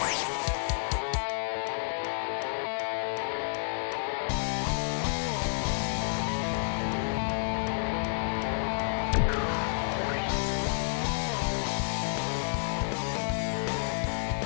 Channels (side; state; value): right; silent; digital silence